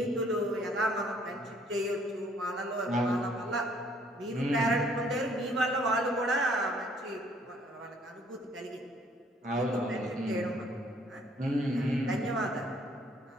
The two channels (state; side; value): normal; both; correlation 0.62